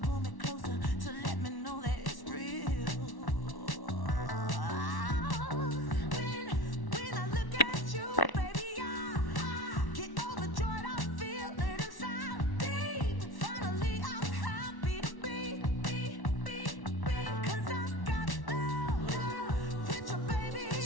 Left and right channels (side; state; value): right; late; 1.1 ms